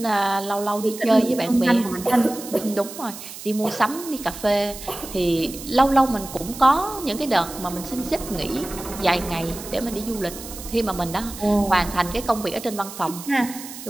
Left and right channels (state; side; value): noise; right; hiss, 12 dB below the sound